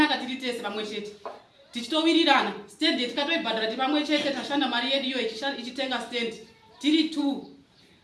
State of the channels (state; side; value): identical; both; correlation 1.00